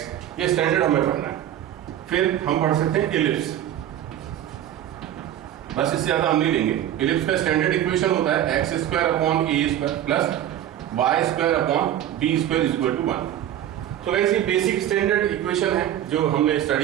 ये स्टैंडर्ड हमें पढ़ना है। फिर हम पढ़ सकते हैं इलिप्स। बस इससे ज्यादा हम नहीं लेंगे। इलिप्स का स्टैंडर्ड इक्वेशन होता है X square upon A square plus Y square upon B square is equal to 1। तो गाइस ये बेसिक स्टैंडर्ड इक्वेशन है जो हमने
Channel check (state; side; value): quieter; left; 11.5 dB